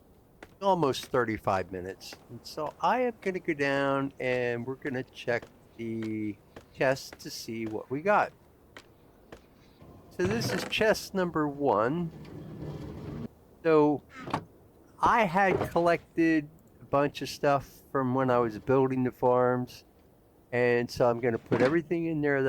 almost 35 minutes. And so I am going to go down and we're going to check the chest to see what we got. So this is chest number 1. So I had collected a bunch of stuff from when I was building the farms. And so I'm going to put everything in there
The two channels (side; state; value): both; identical; correlation 1.00